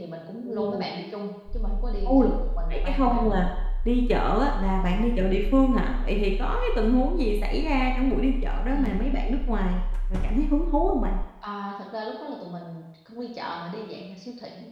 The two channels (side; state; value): both; identical; correlation 1.00